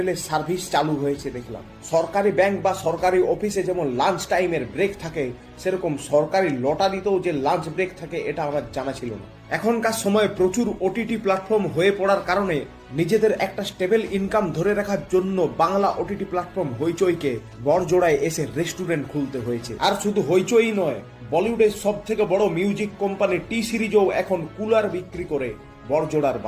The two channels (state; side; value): identical; both; correlation 1.00